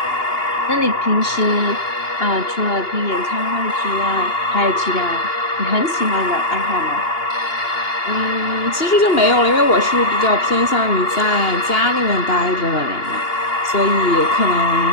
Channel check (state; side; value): late; right; 2.8 ms